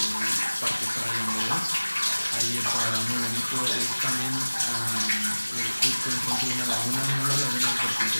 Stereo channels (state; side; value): inverted; both; correlation -1.00